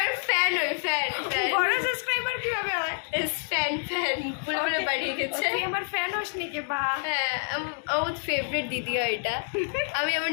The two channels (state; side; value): silent; right; 60 dB below the other